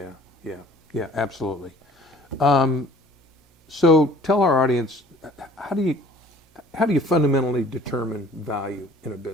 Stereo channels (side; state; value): both; normal; correlation 0.52